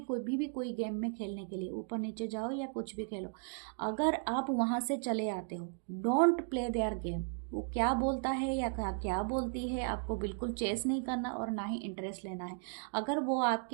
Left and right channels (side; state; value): left; silent; 54 dB below the other